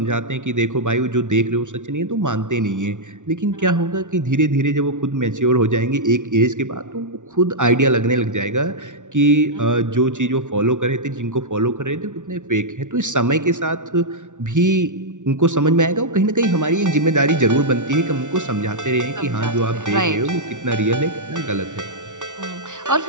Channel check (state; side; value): late; left; 0.86 ms